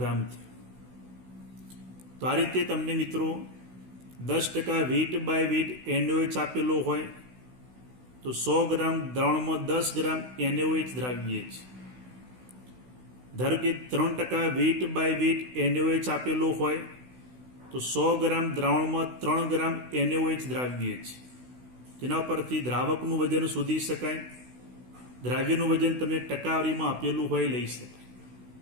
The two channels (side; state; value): left; late; 16 ms